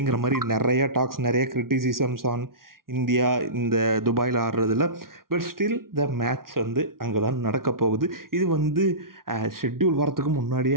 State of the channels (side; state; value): left; late; 0.92 ms